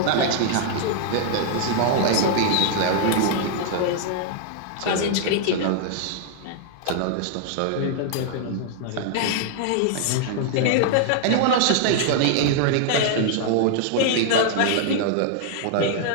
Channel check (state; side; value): different; both; correlation -0.01